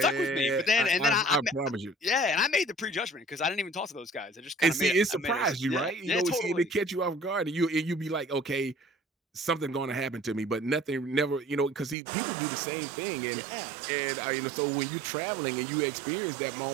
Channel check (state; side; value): drops out; left; at 12.0 s